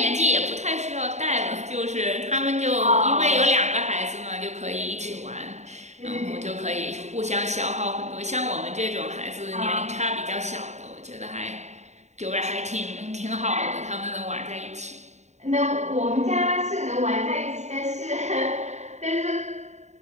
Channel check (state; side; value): late; left; 0.33 ms